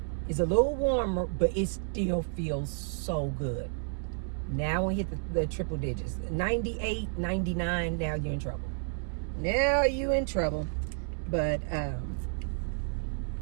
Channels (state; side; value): silent; left; 57 dB below the other